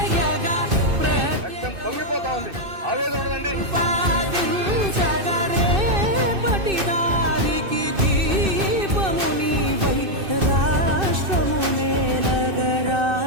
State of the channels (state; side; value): late; left; 2.6 ms